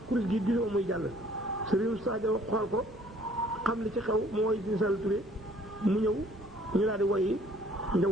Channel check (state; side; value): normal; both; correlation 0.58